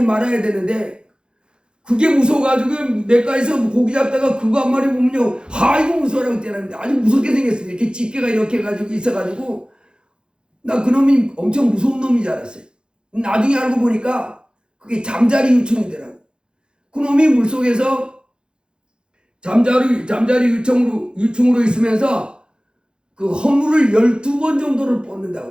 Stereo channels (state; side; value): late; left; 0.050 ms